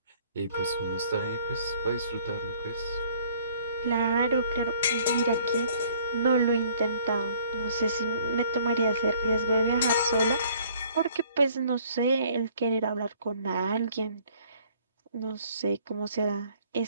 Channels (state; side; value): inverted; both; correlation -0.57